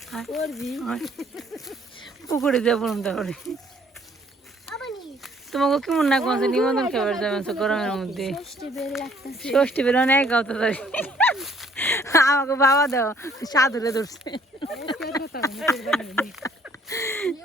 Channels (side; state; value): both; normal; correlation 0.62